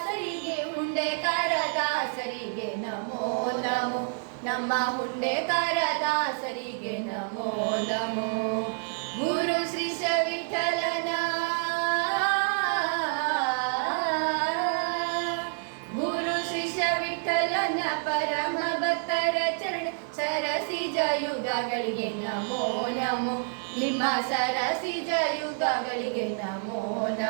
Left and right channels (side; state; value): left; silent; digital silence